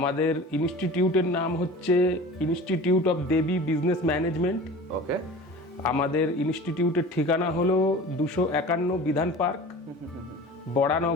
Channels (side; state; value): both; normal; correlation 0.38